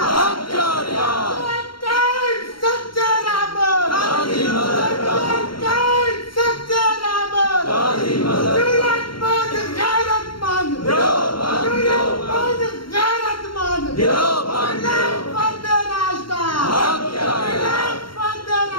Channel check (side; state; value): right; late; 0.73 ms